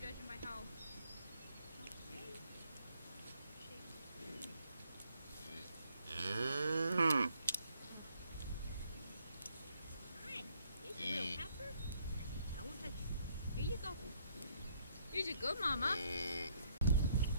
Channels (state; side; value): inverted; both; correlation -0.69